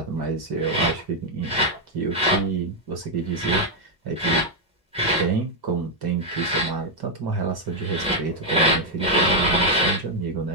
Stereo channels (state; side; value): normal; both; correlation 0.00